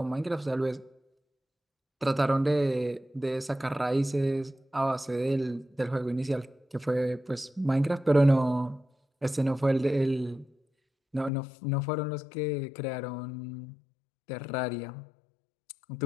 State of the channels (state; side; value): drops out; right; at 11.3 s